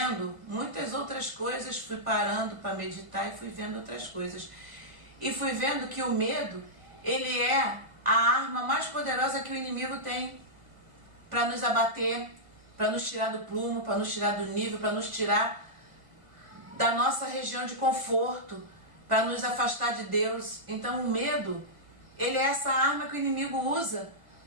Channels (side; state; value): left; late; 1.5 ms